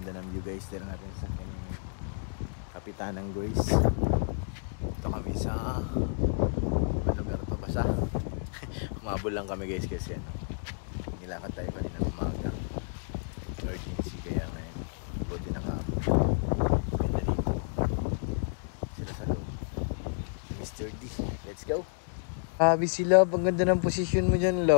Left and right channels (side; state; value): right; silent; digital silence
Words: ng view guys. Dito natin sa kaning Kapitanang Grace. Ito kami sa lugar to basa. Umabol lang kami guys kasi nilakad tayo kanina umaga. Emergency kaya ngayon. Buti nakaabot. Ganda dito. Sila sa loob. Mr. D. Let's go. Sabi si Love, ang ganda ng posisyon mo dyan,